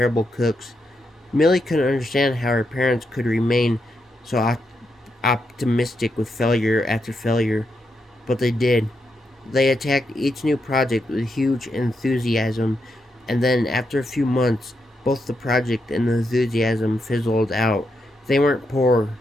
cooks. Millie couldn't understand how her parents could remain so optimistic with failure after failure, but they did. They attacked each new project with huge enthusiasm, and then after a few months, both the project and the enthusiasm fizzled out. They weren't poor,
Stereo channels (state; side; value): normal; both; correlation 0.83